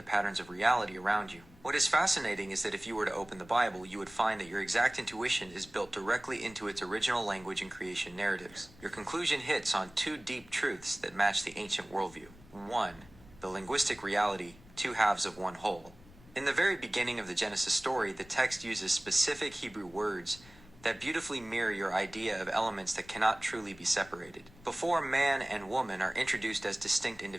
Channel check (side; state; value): left; noise; rumble, 23 dB below the sound